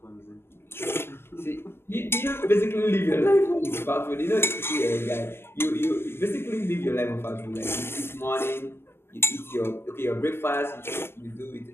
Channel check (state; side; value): late; right; 0.12 ms